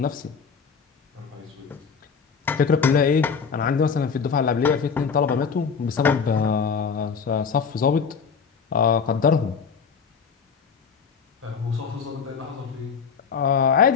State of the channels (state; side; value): quieter; right; 6.0 dB